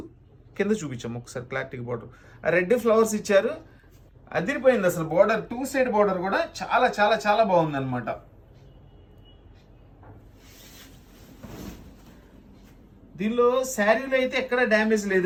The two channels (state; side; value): identical; both; correlation 1.00